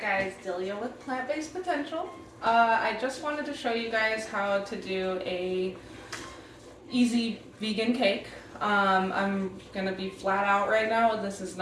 Delia with Plant-Based Potential. I just wanted to show you guys how to do a easy vegan cake. I'm gonna be flat out right now. This is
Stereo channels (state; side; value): identical; both; correlation 1.00